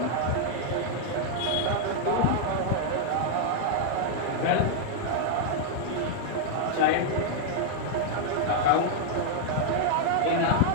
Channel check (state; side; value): different; both; correlation -0.01